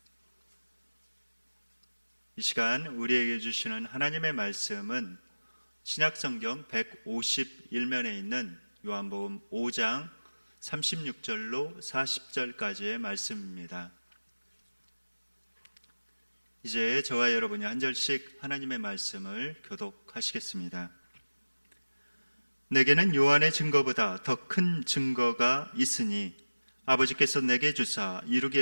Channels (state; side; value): inverted; both; correlation -1.00